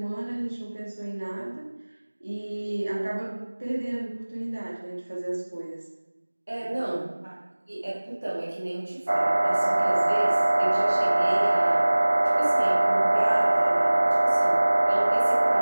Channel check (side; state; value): both; inverted; correlation -1.00